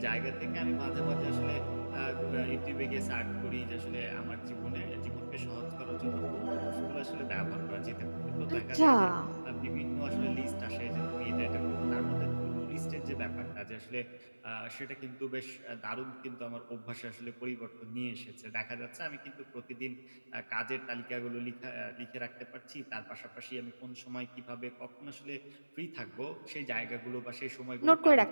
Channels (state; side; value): inverted; both; correlation -1.00